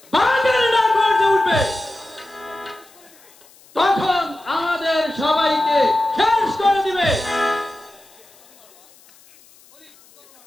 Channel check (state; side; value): noise; left; hiss, 27 dB below the sound